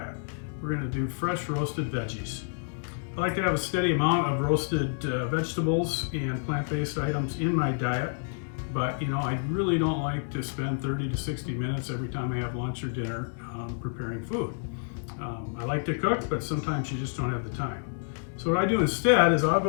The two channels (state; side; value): silent; right; digital silence